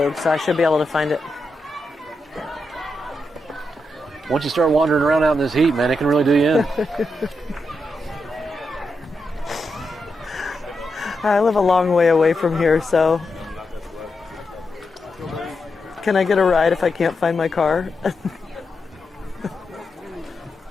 so I should be able to find it. Once you start wandering around out in this heat, man, it can really do you in. I live a long way away from here, so can I get a ride if I can't find my car?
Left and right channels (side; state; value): both; normal; correlation 0.85